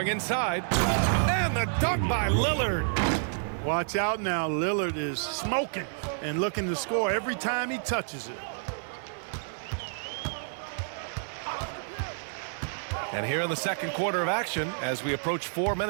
inside. And the dunk by Lillard. Watch out now. Lillard is smoking and looking to score every time he touches it. And here in the second quarter of action as we approach 4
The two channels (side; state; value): left; silent; 58 dB below the other